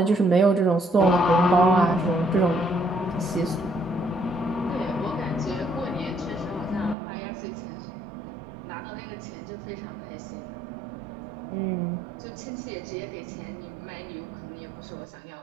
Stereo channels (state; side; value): drops out; left; at 7.0 s